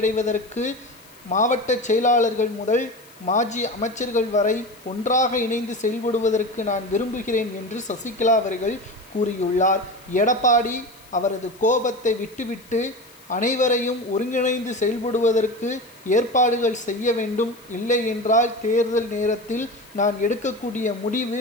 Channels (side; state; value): left; noise; hiss, 25 dB below the sound